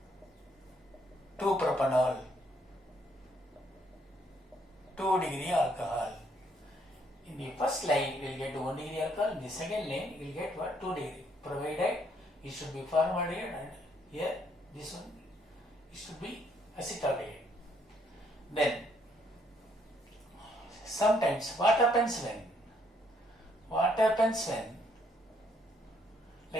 2-propanol, 2 degree alcohol. In the first line, you will get 1 degree alcohol. In the second line, you will get what? 2 degree. Provided it should be formaldehyde, and here this one it should be acetaldehyde. Then sometimes what happens when?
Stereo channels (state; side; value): normal; both; correlation 0.69